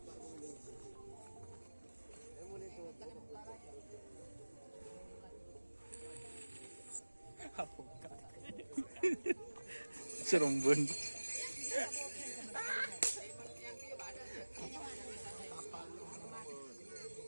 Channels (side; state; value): both; inverted; correlation -1.00